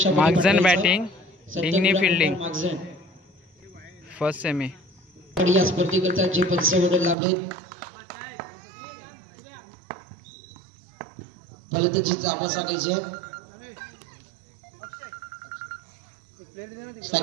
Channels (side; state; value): left; drops out; at 7.2 s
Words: मागझन बॅटिंग ढिंगणी फिल्डिंग फर्स्ट सेमी या स्पर्धेकरता जे पंच लाभले फलंदाजी जावा सांगायचे